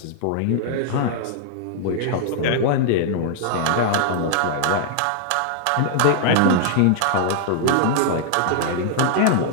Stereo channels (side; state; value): both; different; correlation -0.01